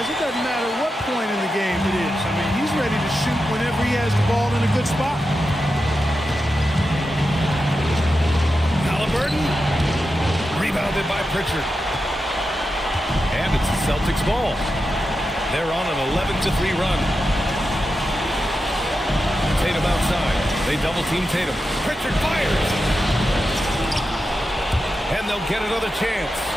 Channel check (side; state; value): both; normal; correlation 0.89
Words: it doesn't matter what point in the game it is. I mean, he's ready to shoot whenever he has the ball in a good spot. Halliburton, rebounded by Pritchard. And it's the Celtics ball. They're on an 11-3 run. Tatum outside. They double team Tatum. Pritchard fires. And they'll get another chance.